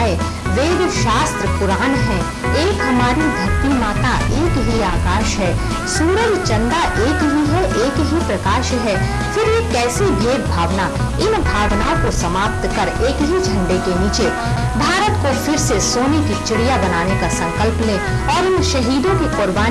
वेद शास्त्र पुराण है, एक हमारी धरती माता एक ही आकाश है। सूरज चंदा एक ही है, एक ही प्रकाश है। फिर ये कैसी भेद भावना, इन भावनाओं को समाप्त कर एक ही झंडे के नीचे भारत को फिर से सोने की चिड़िया बनाने का संकल्प लें और इन शहीदों की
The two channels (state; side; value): identical; both; correlation 1.00